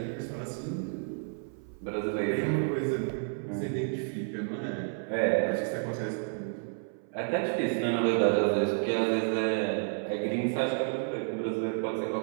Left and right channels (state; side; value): silent; left; 56 dB below the other